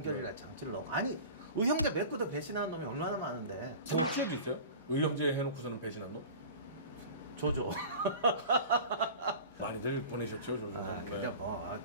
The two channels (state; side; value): inverted; both; correlation -0.37